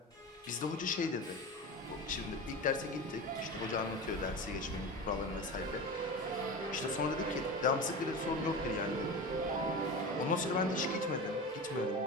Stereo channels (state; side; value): normal; both; correlation 0.28